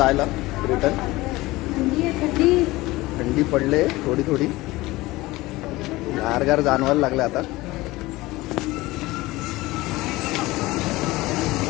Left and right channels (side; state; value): right; quieter; 19.7 dB